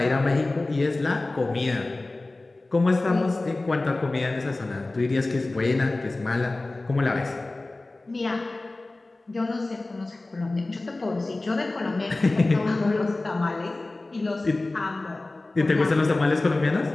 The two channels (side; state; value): right; quieter; 3.0 dB